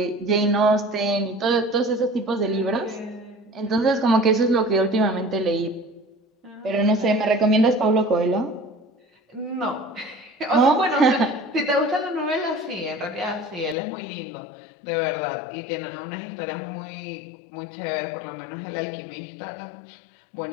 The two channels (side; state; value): right; drops out; at 13.8 s